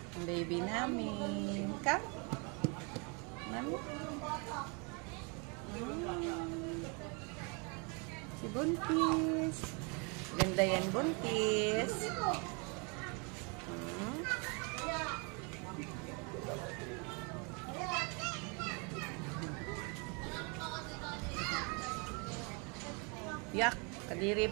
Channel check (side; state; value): left; quieter; 33.3 dB